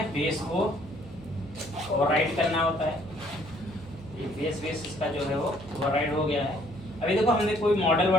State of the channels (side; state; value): right; noise; hum, 21 dB below the sound